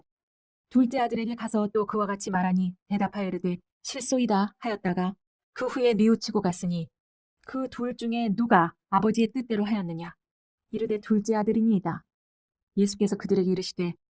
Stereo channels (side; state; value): both; identical; correlation 1.00